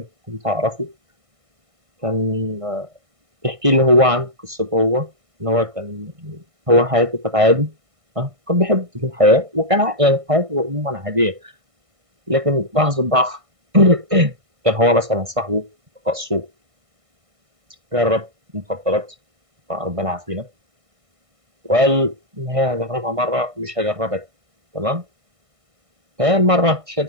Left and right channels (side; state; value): left; late; 1.6 ms